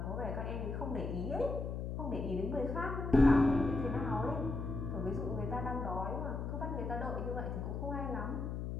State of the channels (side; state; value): left; noise; hum, 4 dB below the sound